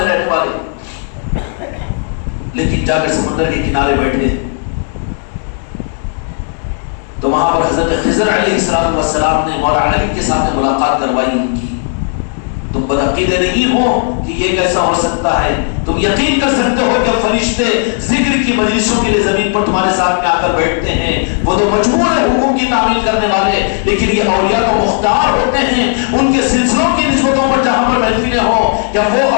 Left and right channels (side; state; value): right; silent; 59 dB below the other